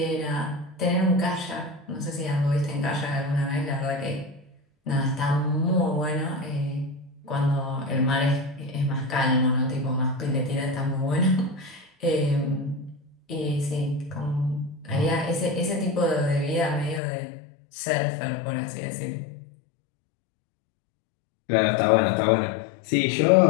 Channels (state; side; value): drops out; right; at 17.0 s